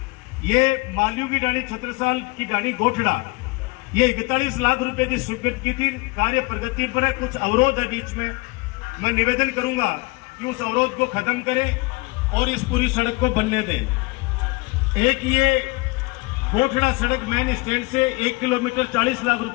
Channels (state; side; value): quieter; right; 24.6 dB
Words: ये मालियों की डाणी, छत्रसाल की डाणी गोठड़ा, ये 41 लाख रुपए की स्वीकृत की थी। कार्य प्रगति पर है, कुछ अवरोध है बीच में। मैं निवेदन करूंगा कि उस अवरोध को खत्म करें और इस पूरी सड़क को बनने दें। एक ये गोठड़ा सड़क मेन स्टैंड से 1 किलोमीटर 40 लाख